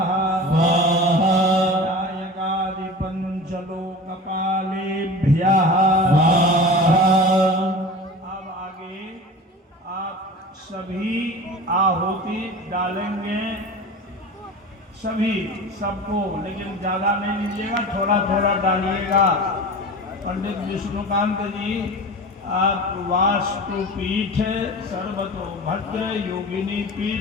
नायकादिपंचलोकपालेभ्यः। अब आगे आप सभी आहुति डालेंगे, सभी सबको, लेकिन ज्यादा नहीं लीजिएगा, थोड़ा थोड़ा डालिएगा। पंडित विष्णुकांत जी, आप वास्तु पीठ, सर्वतोभद्र योगिनी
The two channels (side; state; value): both; normal; correlation 0.34